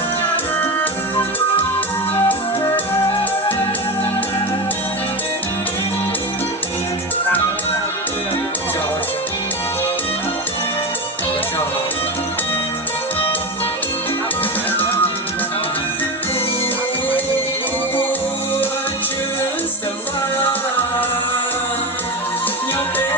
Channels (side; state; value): both; normal; correlation 0.19